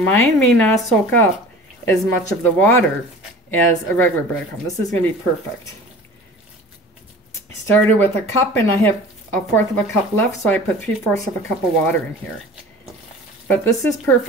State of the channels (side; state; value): both; normal; correlation 0.41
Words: may not soak up as much of the water as a regular breadcrumb. This is going to be perfect. I started with a cup and I have 1/4 of a cup left, so I put 3/4 of a cup of water in here. But this is